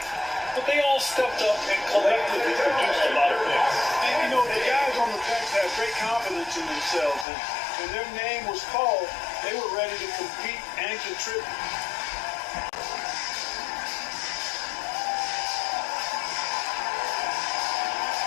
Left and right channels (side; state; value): right; drops out; at 7.2 s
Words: But they all stepped up and collectively produced a lot of points. And, you know, the guys on the bench have great confidence in themselves. And when their name was called, they were ready to compete and contribute.